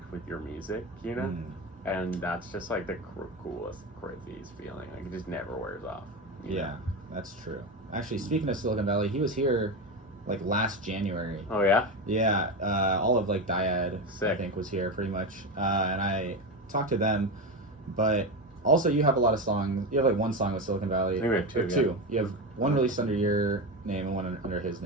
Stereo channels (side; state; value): both; normal; correlation 0.18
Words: with your music, you know? And that's just like the coolest, craziest feeling. Like, it just never wears off. Yeah, that's true. Actually, speaking of Silicon Valley, he was here like last January. Oh yeah? Yeah, all of like Dyad, I think, was here pretty much. And I talked to them, but also you have a lot of songs. You have like one song with Silicon Valley. I think we have two. Two. You have one released under your name and one under his